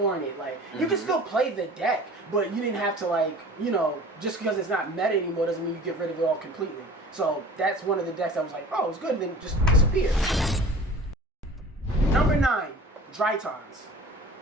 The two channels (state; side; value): normal; both; correlation 0.42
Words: like you can still play the deck, but you didn't have to like, you know, just because it's not meta anymore doesn't mean you get rid of it all completely. So that's one of the decks that was like, oh, it's good, and then just disappeared. Number 9, Drytrons.